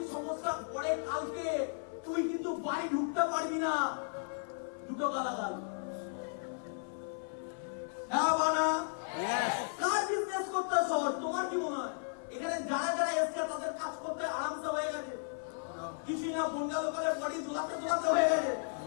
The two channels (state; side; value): silent; right; 54 dB below the other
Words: সমস্যা পড়ে কালকে, তুই কিন্তু বাড়ি ঢুকতে পারবি না। দুটো গালাগাল। কার বিজনেস করতে শহর? তোমার কি মনে হয় এখানে যারা যারা এসছে তাদের কাজ করতে আরামসে হয়ে গেছে? কিছু না, বন্ডা লোকের বডি দোলাতে হয়ে গেছে